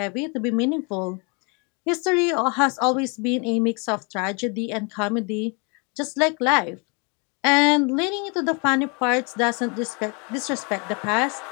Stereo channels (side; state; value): right; quieter; 33.1 dB